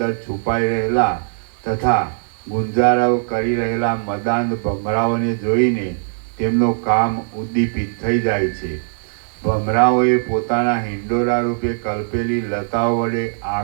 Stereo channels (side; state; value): left; silent; digital silence